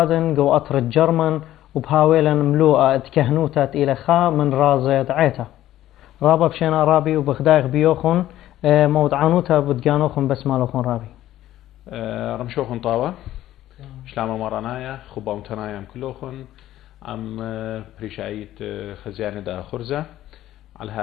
جو أطر الجرمن وبهاويلا ملوءة اتكهنوتا إلى خا من رازة دعيتا رابا بشينا رابي وبخدايق بيوخن مود عنوتا بدقانوخن بس مالوخن رابي رمشوخن طاوة شلامو مرانايا خبا متنايا كلوخن عم بريشايت خزيانة دا خرزة على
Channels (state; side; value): quieter; right; 13.7 dB